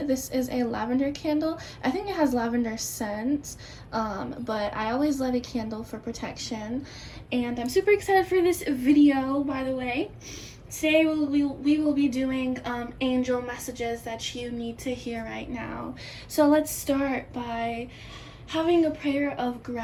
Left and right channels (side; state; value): both; identical; correlation 1.00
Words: This is a lavender candle. I think it has lavender scent, but I always light a candle for protection. And I'm super excited for this video, by the way. Today we will be doing angel messages that you need to hear right now. So let's start by having a prayer of